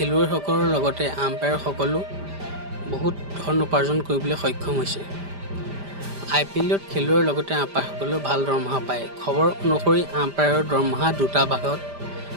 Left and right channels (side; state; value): left; late; 5.0 ms